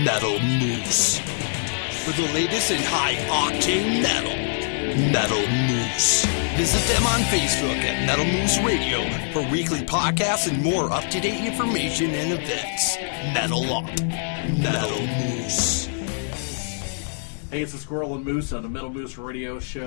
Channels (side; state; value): right; silent; 63 dB below the other